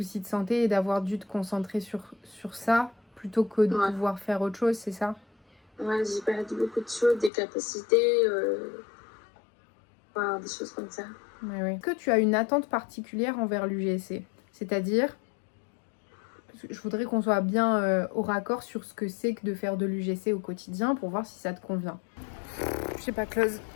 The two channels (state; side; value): drops out; right; at 7.3 s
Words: de santé et d'avoir dû te concentrer sur ça plutôt que de pouvoir faire autre chose, c'est ça? Ouais, j'ai perdu beaucoup de choses, des capacités, des choses comme ça. Ouais. Est-ce que tu as une attente particulière envers l'UGC? C'est-à-dire, je voudrais qu'on soit bien au raccord sur ce que c'est que de faire de l'UGC au quotidien pour voir si ça te convient. Je sais pas, Close.